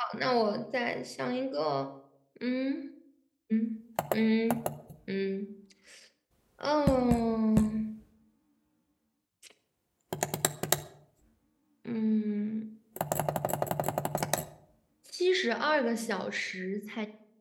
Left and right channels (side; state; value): both; identical; correlation 1.00